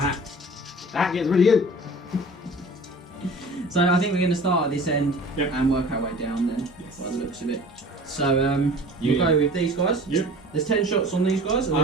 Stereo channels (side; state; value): both; normal; correlation 0.43